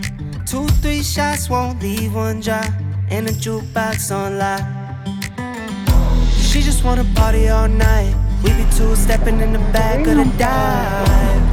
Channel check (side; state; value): both; identical; correlation 1.00